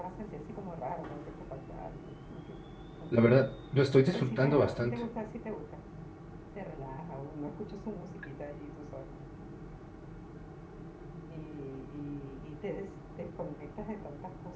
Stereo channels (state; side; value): identical; both; correlation 1.00